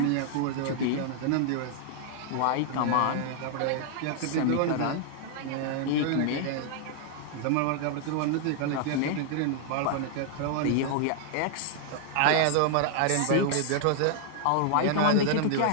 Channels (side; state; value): both; different; correlation 0.00